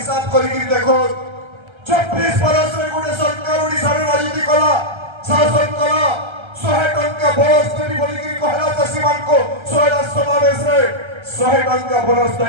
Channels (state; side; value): late; left; 1.3 ms